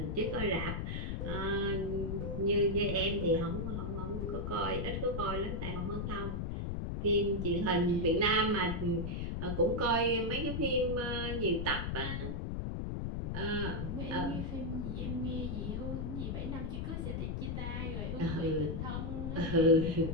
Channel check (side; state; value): left; noise; rumble, 2 dB below the sound